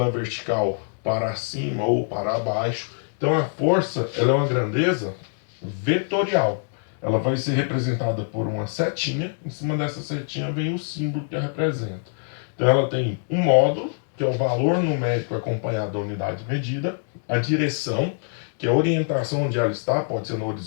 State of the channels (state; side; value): silent; right; digital silence